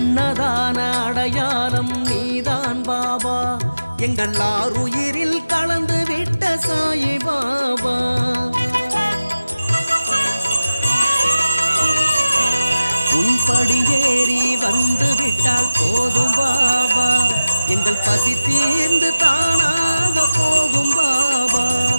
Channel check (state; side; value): inverted; both; correlation -0.93